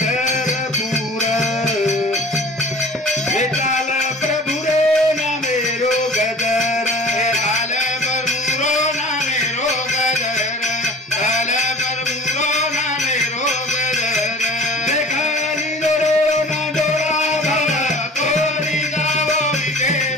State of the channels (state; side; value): normal; both; correlation 0.43